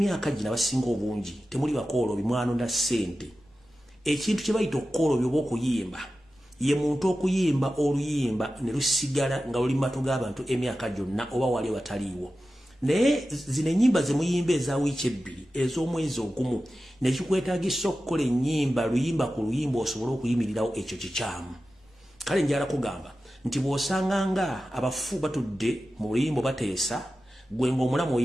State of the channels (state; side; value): normal; both; correlation 0.93